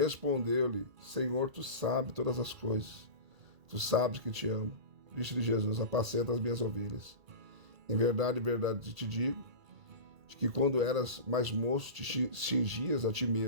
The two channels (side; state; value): left; late; 2.3 ms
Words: Senhor, tu sabes todas as coisas. Tu sabes que te amo. Disse-lhe Jesus: Apacenta as minhas ovelhas. Em verdade te digo, de que quando eras mais moço te cingias a ti